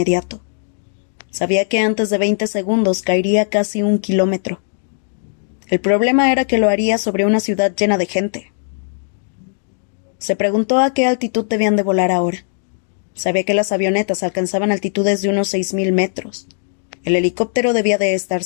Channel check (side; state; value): right; silent; digital silence